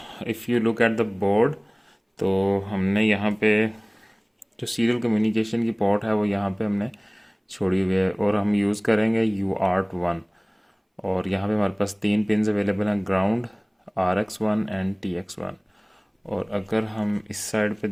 if you look at the board, तो हमने यहाँ पे जो सीरियल कम्युनिकेशन की पोर्ट है वो यहाँ पे हमने छोड़ी हुई है और हम यूज़ करेंगे UART1। और यहाँ पे हमारे पास तीन पिन्स अवेलेबल हैं, ग्राउंड, RX1 एंड TX1। और अगर हम इस साइड पे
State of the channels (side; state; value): both; identical; correlation 1.00